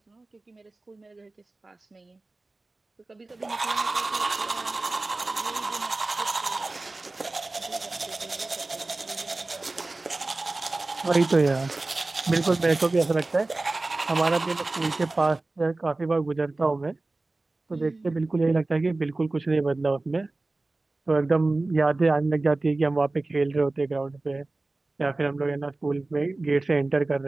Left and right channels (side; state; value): left; quieter; 3.1 dB